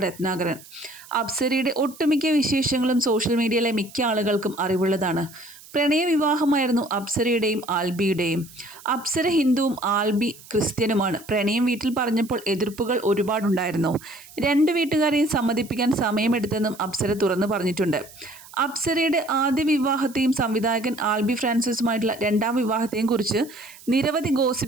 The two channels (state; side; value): noise; right; hiss, 20 dB below the sound